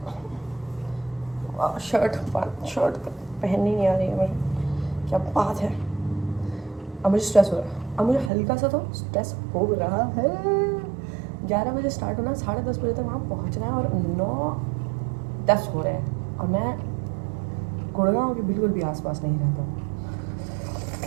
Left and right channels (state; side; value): drops out; left; at 8.3 s